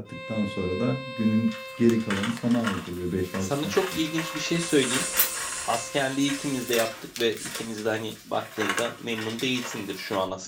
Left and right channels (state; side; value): identical; both; correlation 1.00